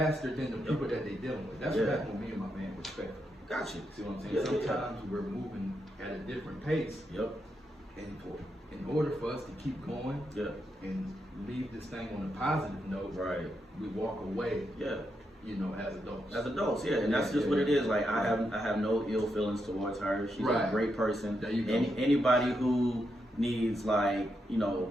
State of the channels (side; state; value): both; normal; correlation 0.83